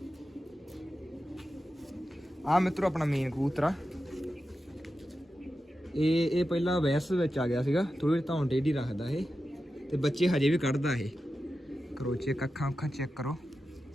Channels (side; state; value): both; normal; correlation 0.91